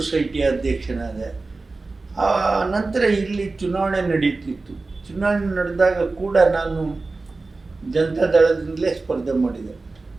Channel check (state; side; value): quieter; left; 3.6 dB